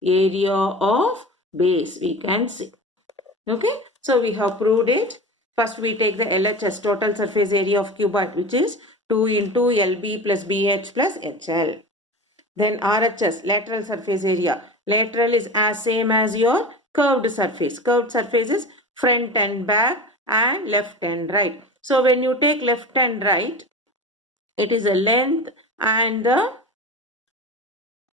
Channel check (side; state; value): both; normal; correlation 0.31